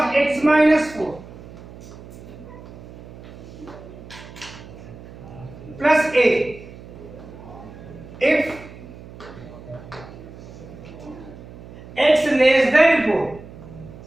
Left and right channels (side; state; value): right; noise; hum, 16 dB below the sound